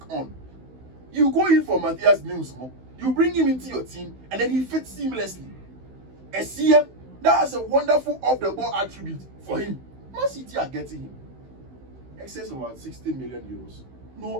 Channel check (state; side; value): late; left; 16 ms